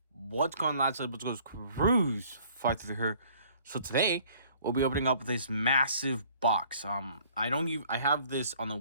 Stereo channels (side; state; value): both; inverted; correlation -0.56